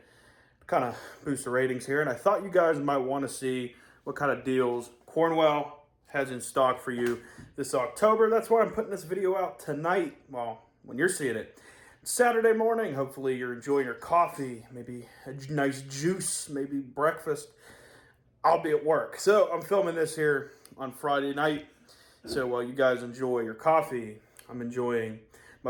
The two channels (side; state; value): both; identical; correlation 1.00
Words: to kind of boost the ratings here. And I thought you guys might want to see what kind of deals Cornwell has in stock for you this October. That's why I'm putting this video out tonight. Well, when you're seeing it. Saturday morning, hopefully you're enjoying your coffee, maybe a nice juice, maybe breakfast. I'll be at work. So I'm filming this here on Friday night. So while you guys enjoy your coffee, I'm enjoying my